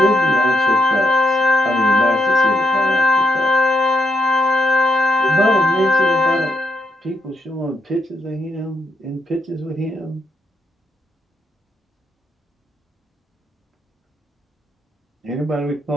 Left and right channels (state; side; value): normal; both; correlation 0.76